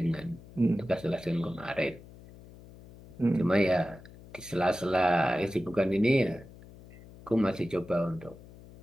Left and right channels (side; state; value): left; noise; hum, 20 dB below the sound